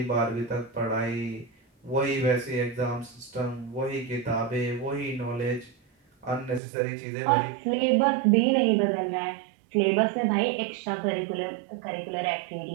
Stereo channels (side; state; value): left; drops out; at 6.6 s